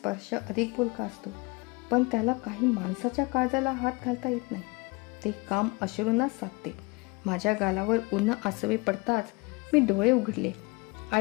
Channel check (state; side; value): quieter; right; 26.2 dB